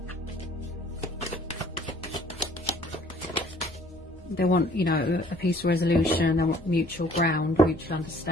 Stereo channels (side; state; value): both; normal; correlation 0.56